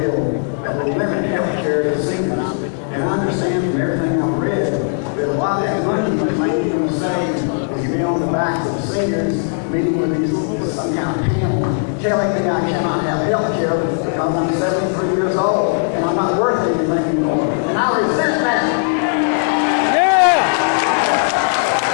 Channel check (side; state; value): right; silent; 59 dB below the other